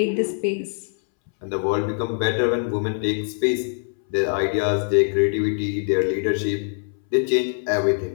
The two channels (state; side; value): silent; right; 63 dB below the other